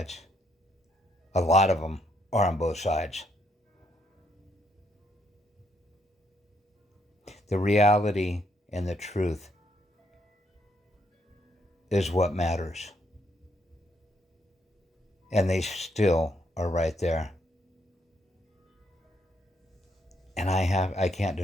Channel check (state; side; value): normal; both; correlation 0.74